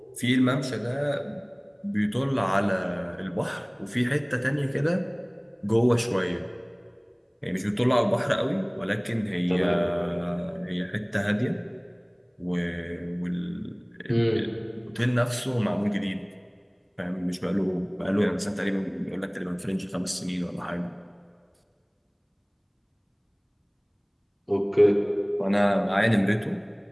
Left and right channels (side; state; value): both; identical; correlation 1.00